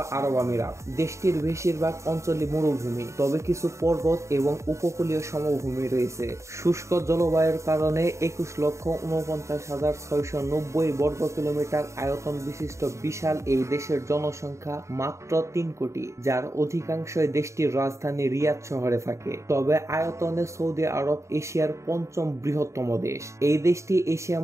আরব আমিরাত। দেশটির বেশিরভাগ অঞ্চলই মরুভূমি, তবে কিছু পর্বত এবং উপকূলীয় সমভূমি রয়েছে। শুষ্ক জলবায়ুর কারণে 21,49,690 বর্গ কিলোমিটার আয়তন বিশিষ্ট বিশাল এই দেশের জনসংখ্যা মাত্র 3 কোটি, যার অধিকাংশই দেশটির রাজধানী রিয়াদ শহরে থাকে। তবে আয়তনে সৌদি আরব এশিয়ার 5ম বৃহত্তম দেশ। এই দেশটি এশিয়া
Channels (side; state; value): left; late; 0.14 ms